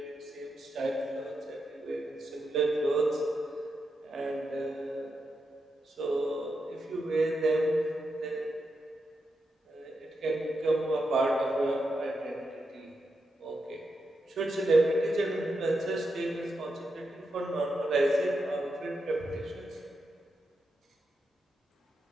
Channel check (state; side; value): normal; both; correlation 0.86